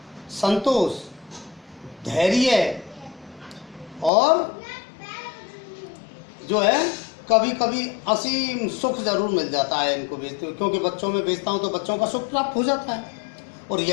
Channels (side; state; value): right; drops out; at 4.1 s